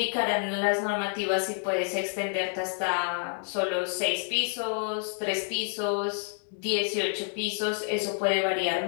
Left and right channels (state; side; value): silent; right; 59 dB below the other